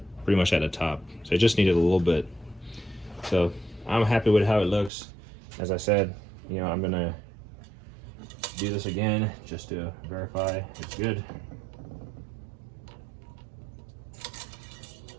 pretty much at the top. So I just needed a little bit. So I'm happy with how it looks. As I said, you know, I'm gonna do this again just to verify it's good.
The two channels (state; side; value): drops out; left; at 4.9 s